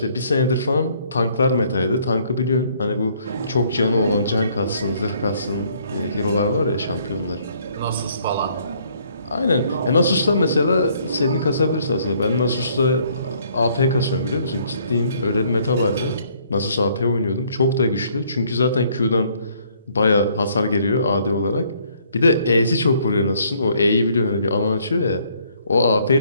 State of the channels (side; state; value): both; inverted; correlation -0.64